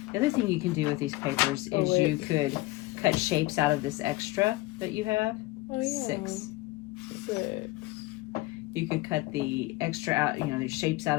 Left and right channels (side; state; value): right; quieter; 20.2 dB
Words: the other thing you can do with these papers is you could cut shapes out of this extra that you have. Oh, yeah. 6. 6. You could cut the extra out, the shapes out